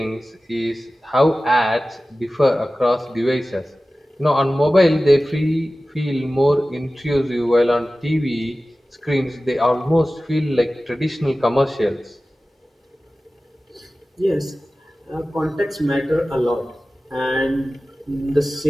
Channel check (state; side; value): normal; both; correlation 0.96